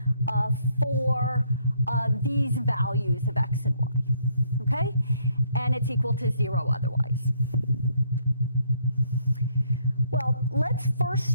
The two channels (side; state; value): both; inverted; correlation -0.69